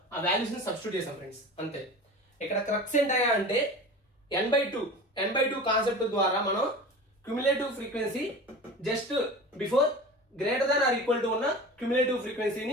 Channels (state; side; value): normal; both; correlation 0.35